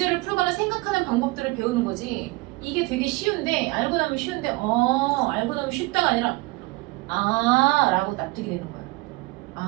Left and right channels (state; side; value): quieter; left; 22.6 dB